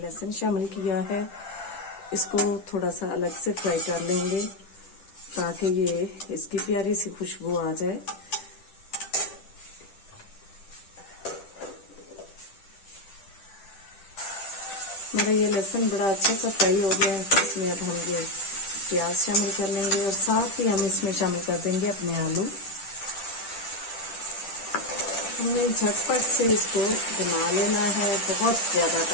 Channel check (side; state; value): right; late; 10 ms